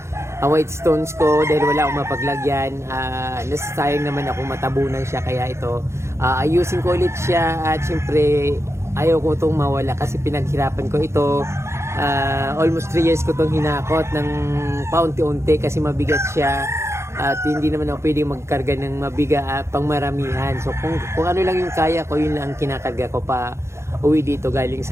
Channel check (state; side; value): late; left; 0.13 ms